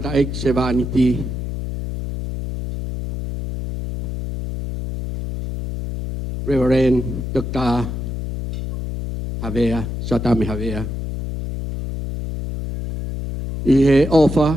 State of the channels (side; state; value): left; noise; hum, 5 dB below the sound